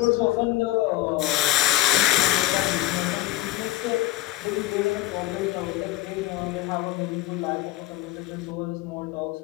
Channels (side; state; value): right; quieter; 16.0 dB